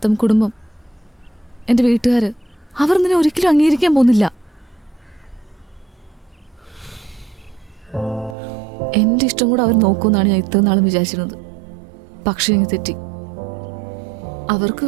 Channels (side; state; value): left; drops out; at 8.3 s